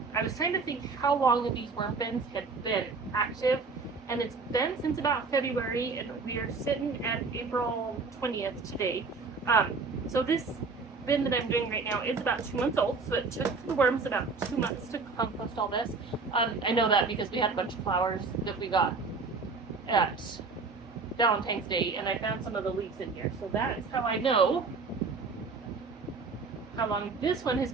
I was trying to think how long these worm bins had been active, and it's been since about February, and we are sitting at April 20th today. So this bin that I'm doing right now is about 2 months old, so it took the worms about 2 months to compost all this. I know that because we had a bunch of flowers that we got at Valentine's Day, and I found some of the leaves in here. So that is how I know how long this one has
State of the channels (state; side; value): quieter; left; 4.4 dB